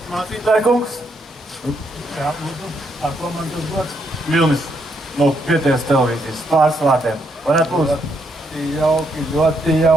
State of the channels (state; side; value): normal; both; correlation 0.76